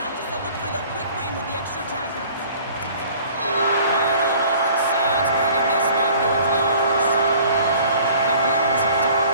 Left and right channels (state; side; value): inverted; both; correlation -0.50